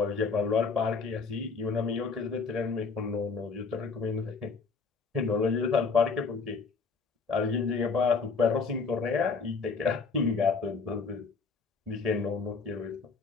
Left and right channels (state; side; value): quieter; right; 4.8 dB